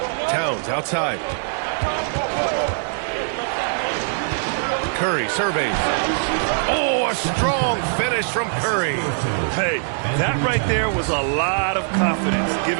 Towns outside. Curry surveys. Oh, a strong finish from Curry. Hey, that right there was a lot of confidence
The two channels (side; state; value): left; silent; digital silence